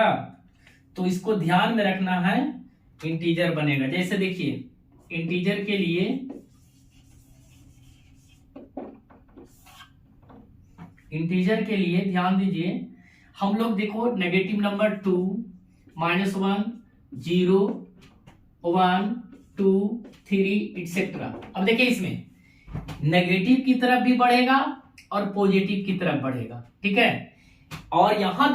तो इसको ध्यान में रखना है, इंटीजर बनेगा। जैसे देखिए इंटीजर के लिए ध्यान दीजिए, हम लोग देखो नेगेटिव नंबर 2, -1, 0, 1, 2, 3 एटसेट्रा। अब देखिए इसमें नेगेटिव की तरफ भी बढ़ेगा और पॉजिटिव की तरफ बढ़ेगा, ठीक है। और यहां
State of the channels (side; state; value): both; identical; correlation 1.00